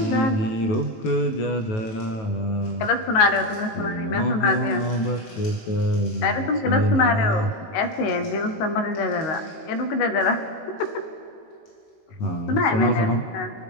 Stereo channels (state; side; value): late; right; 18 ms